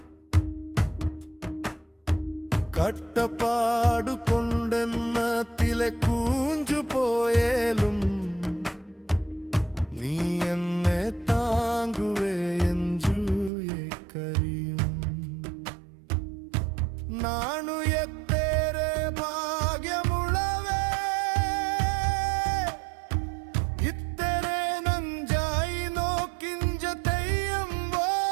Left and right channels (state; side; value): drops out; left; at 13.5 s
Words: കട്ടപ്പാടു കൊണ്ടെന്നത്തിലെ കൂഞ്ചു പോയേലും നീ എന്നെ താങ്ങുവേ എഞ്ചു കരിയും നാണു എത്തേരെ ഭാഗ്യമുള്ളവേ ഇത്തരെ നഞ്ചായി നോക്കിഞ്ച തെയ്യം